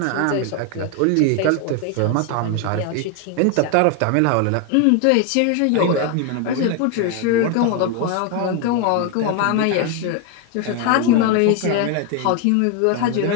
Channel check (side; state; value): both; different; correlation 0.01